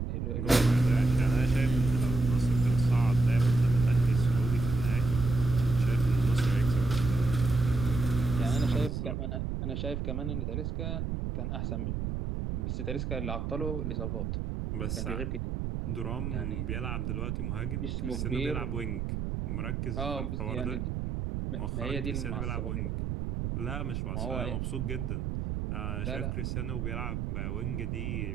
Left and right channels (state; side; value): noise; right; rumble, 2 dB below the sound